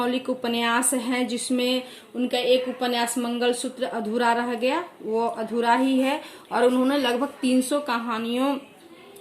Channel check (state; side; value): identical; both; correlation 1.00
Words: उपन्यास हैं जिसमें उनका एक उपन्यास मंगलसूत्र अधूरा रह गया, वो अधूरा ही है। और उन्होंने लगभग 300